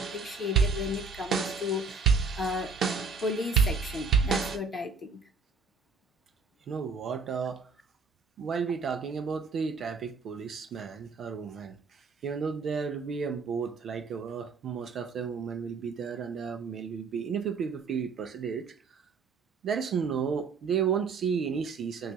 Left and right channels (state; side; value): quieter; left; 4.6 dB